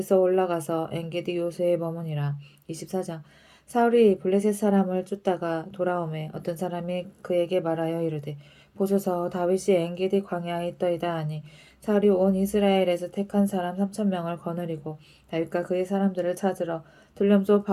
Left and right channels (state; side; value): identical; both; correlation 1.00